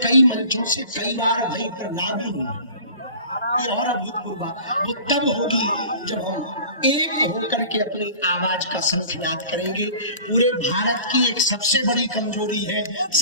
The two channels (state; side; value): inverted; both; correlation -0.42